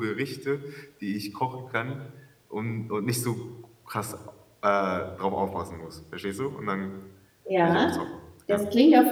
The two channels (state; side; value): identical; both; correlation 1.00